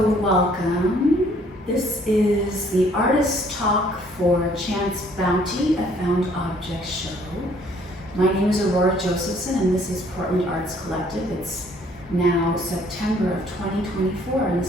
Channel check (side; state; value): both; normal; correlation 0.61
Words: welcome. This is the Artist Talk for Chance Bounty, a Found Object show. My name is Aurora Josephson and this is Portland Arts Collective. It's now September of 2024 and